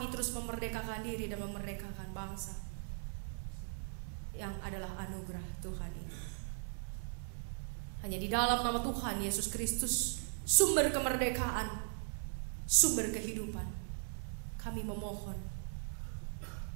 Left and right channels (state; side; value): silent; left; digital silence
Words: terus memerdekakan diri dan memerdekakan bangsa yang adalah anugerah Tuhan ini. Hanya di dalam nama Tuhan Yesus Kristus, sumber kemerdekaan, sumber kehidupan, kami memohon.